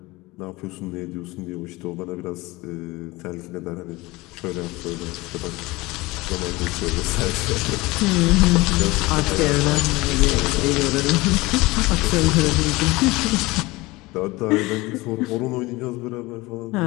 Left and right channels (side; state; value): right; quieter; 21.5 dB